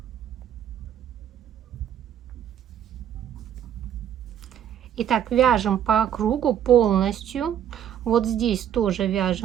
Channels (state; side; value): quieter; left; 9.8 dB